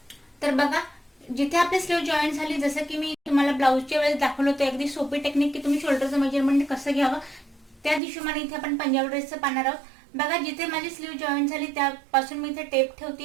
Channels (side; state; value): left; drops out; at 8.0 s